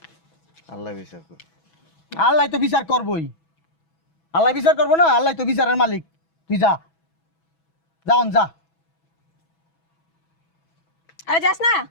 আল্লাহ বিচার করুন। আল্লাহ তো বিচার করবই, আল্লাহ বিচার করবো না? আল্লাহ তো বিচারের মালিক। তুই যা, যাওন যা। আরে যাস না,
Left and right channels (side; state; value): right; late; 6.1 ms